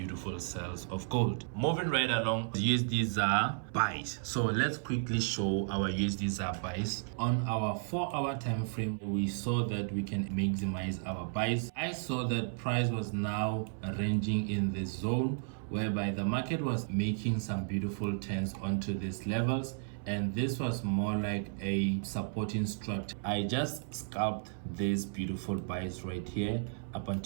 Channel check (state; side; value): silent; left; 55 dB below the other